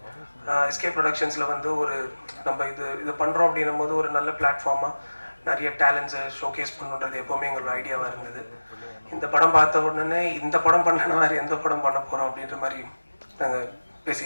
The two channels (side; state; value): both; inverted; correlation -1.00